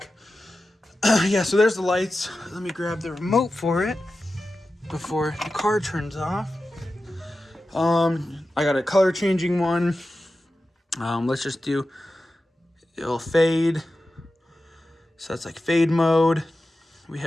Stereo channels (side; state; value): both; normal; correlation 0.93